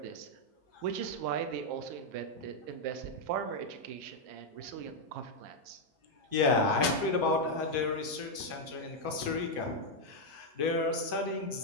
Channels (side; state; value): left; late; 6.8 ms